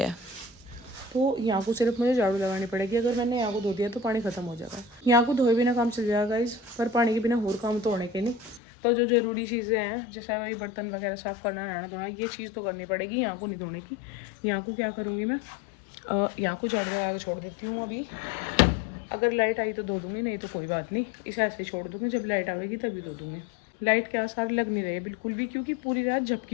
तो यहाँ को सिर्फ मुझे झाड़ू लगानी पड़ेगी। अगर मैंने यहाँ को धो दिया तो पानी खत्म हो जाएगा, यहाँ को धोए बिना काम चल जाएगा इस, पर पानी के बिना और काम तो होने के नहीं। तो जो ज़रूरी चीज़ें हैं जैसे वही बर्तन वगैरह साफ़ करना, नहाना धोना, ये चीज़ तो करनी पड़ेगी, यहाँ को नहीं धोने की। यहाँ को क्या करूँगी मैं, यहाँ को झाड़ू लगा के छोड़ देती हूँ अभी। अगर लाइट आई तो धो दूँगी, नहीं तो कोई बात नहीं, इसे ऐसे छोड़ दूँगी, जब लाइट आएगी तभी धो दूँगी। लाइट के आसार लग नहीं रहे बिल्कुल भी, क्योंकि पूरी रात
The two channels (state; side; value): drops out; right; at 8.6 s